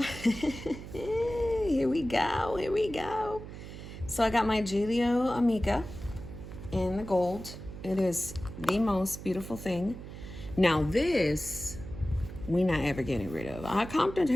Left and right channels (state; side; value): noise; right; hum, 12 dB below the sound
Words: Here we go. Here we go. So I got my Gillio Amica in the gold. It is the most beautiful thing. Now this, we not ever getting rid of. I